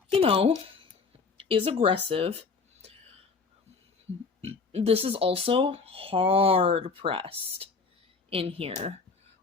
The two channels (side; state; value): right; quieter; 4.6 dB